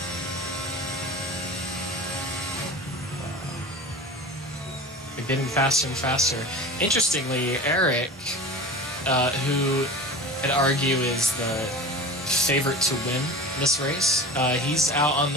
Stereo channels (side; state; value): both; normal; correlation 0.33